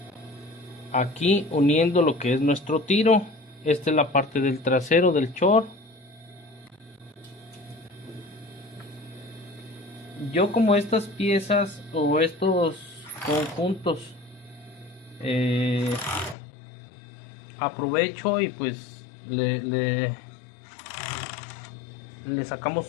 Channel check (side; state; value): right; drops out; at 16.4 s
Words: Aquí uniendo lo que es nuestro tiro. Esta es la parte del trasero del short. Yo como estas piezas o estos conjuntos aprovecho y pues le